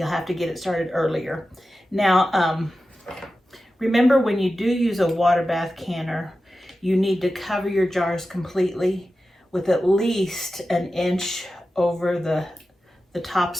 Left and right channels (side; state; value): both; normal; correlation 0.93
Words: have to get it started earlier. Now, remember when you do use a water bath canner, you need to cover your jars completely with at least an inch over the